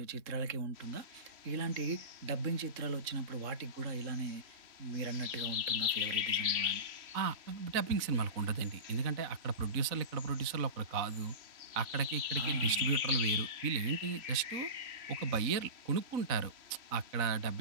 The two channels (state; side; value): late; left; 4.0 ms